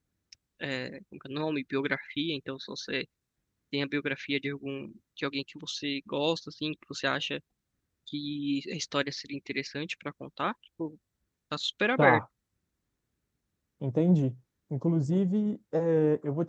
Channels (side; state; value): both; identical; correlation 1.00